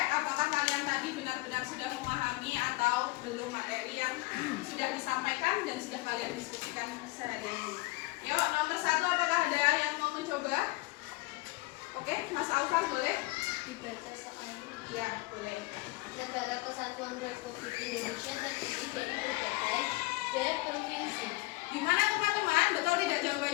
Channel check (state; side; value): quieter; right; 22.5 dB